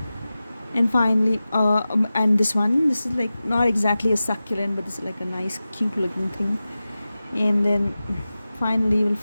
and finally and this one. This is like not exactly a succulent, but this is like a nice cute looking thing, and then finally we'll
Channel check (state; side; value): inverted; both; correlation -0.95